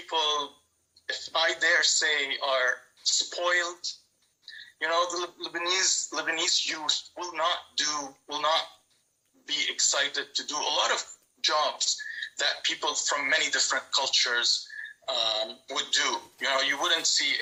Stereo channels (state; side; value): identical; both; correlation 1.00